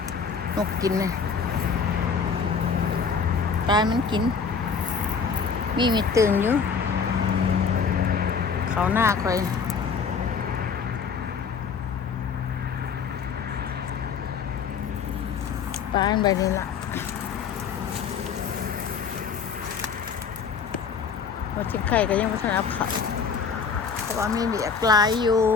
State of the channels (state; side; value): quieter; right; 6.0 dB